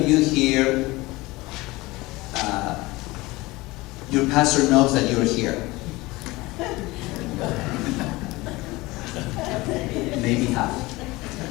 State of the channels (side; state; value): right; quieter; 21.2 dB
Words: you here, your pastor knows that you're here? Maybe half.